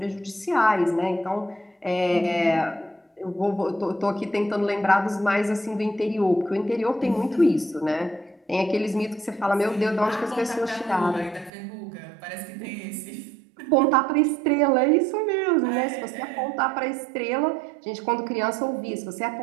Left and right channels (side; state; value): left; drops out; at 11.5 s